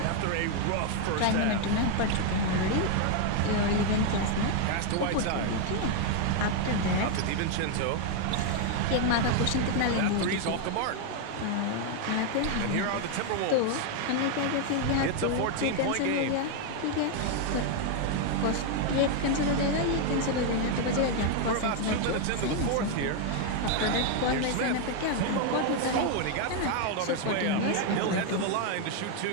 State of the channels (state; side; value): different; both; correlation 0.01